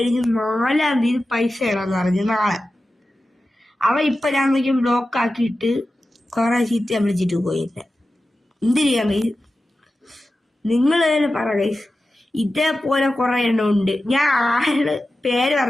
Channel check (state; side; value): normal; both; correlation 0.93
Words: 4-ാം തീയതി പൈസ ഇടാന്ന് പറഞ്ഞു, നാളെ. അവൻ ഇപ്പൊ ഞാൻ നോക്കിയും ബ്ലോക്ക് ആക്കിയിട്ട് കുറെ ചീത്ത വിളിച്ചിട്ട് പോയില്ല. എന്ത് ചെയ്യാൻ കഴിയും? നിങ്ങൾ തന്നെ പറ ഗൈസ്. ഇതേപോലെ കുറെ എണ്ണം ഉണ്ട്. ഞാൻ ആരുടെ പേര്